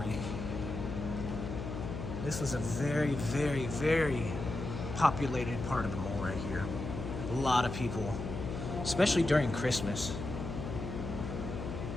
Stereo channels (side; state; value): left; noise; hum, 6 dB below the sound